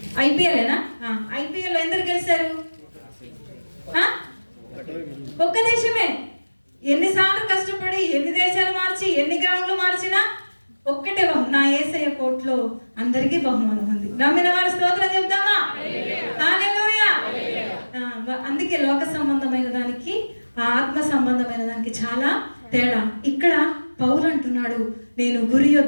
ఐపీఎల్నా? ఐపీఎల్ ఎందరు గెలిచారు? ఒక్క దేశమే. ఎన్నిసార్లు కష్టపడి ఎన్ని దేశాలు మార్చి ఎన్ని గ్రౌండ్లు మార్చినా ఒక్కటే నా యేసయ్య కోట్లో అందరికీ బహుమానం ఉంది. నమ్మిన వారి స్తోత్రం చెప్దామా? హల్లెలూయా. అందుకే లోక సంబంధమైన దానికి ఆత్మ సంబంధమైన దానికి చాలా తేడా. ఇక్కడ పౌలు అంటున్నాడు, నేను గురి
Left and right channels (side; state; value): both; inverted; correlation -1.00